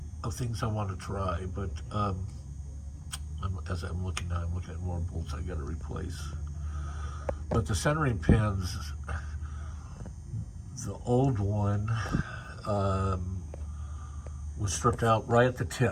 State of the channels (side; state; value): both; identical; correlation 1.00